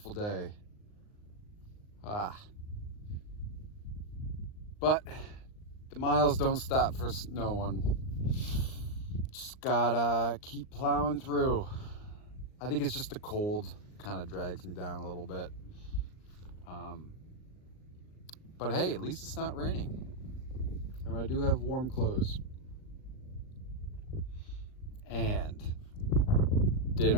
day. But the miles don't stop for no one. Just gotta keep plowing through. I think it's just the cold kind of drags me down a little bit. But hey, at least it's not raining. And I do have warm clothes. And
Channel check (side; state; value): right; late; 39 ms